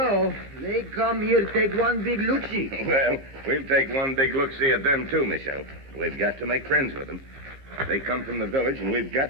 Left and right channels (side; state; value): left; late; 15 ms